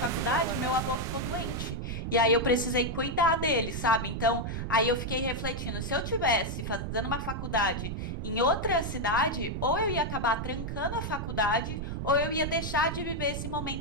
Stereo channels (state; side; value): noise; right; rumble, 4 dB below the sound